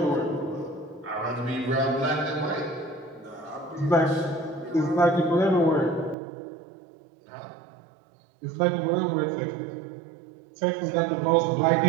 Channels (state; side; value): drops out; left; at 6.2 s